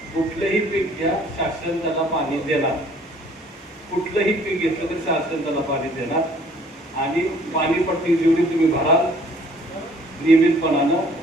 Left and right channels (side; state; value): both; normal; correlation 0.57